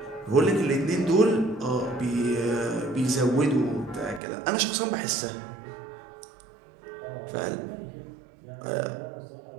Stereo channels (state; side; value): drops out; left; at 4.2 s